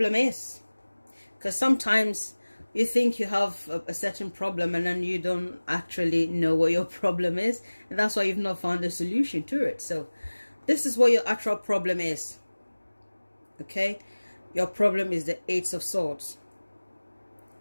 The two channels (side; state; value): both; inverted; correlation -1.00